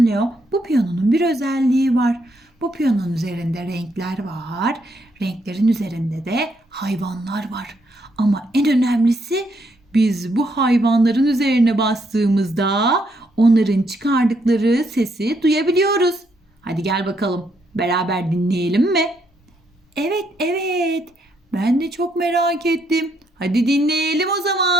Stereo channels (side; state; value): both; normal; correlation 0.75